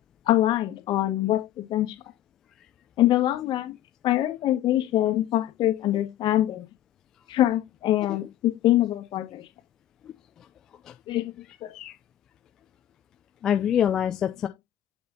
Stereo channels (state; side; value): quieter; right; 12.6 dB